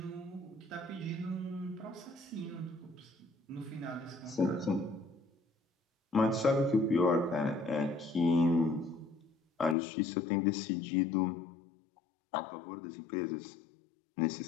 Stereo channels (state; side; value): drops out; right; at 9.8 s